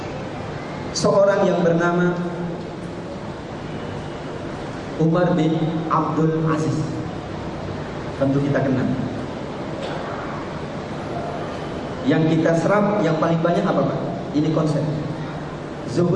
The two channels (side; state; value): both; identical; correlation 1.00